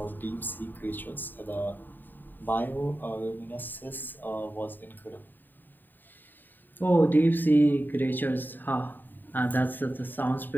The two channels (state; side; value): late; right; 0.091 ms